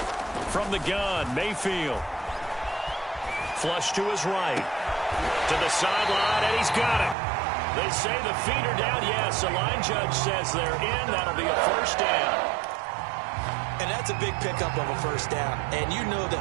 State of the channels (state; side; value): drops out; left; at 7.2 s